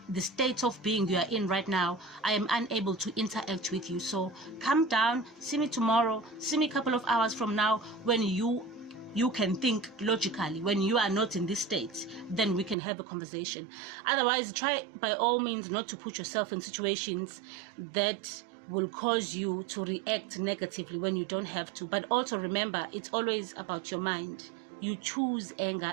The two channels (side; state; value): left; drops out; at 12.8 s